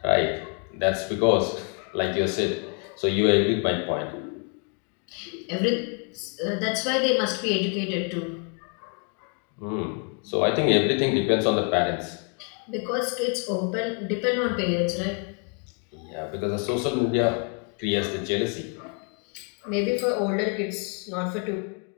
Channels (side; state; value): right; quieter; 39.0 dB